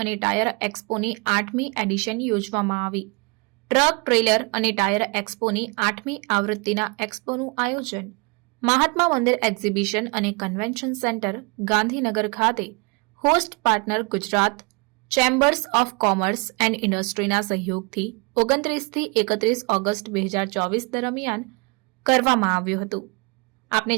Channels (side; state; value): left; quieter; 30.6 dB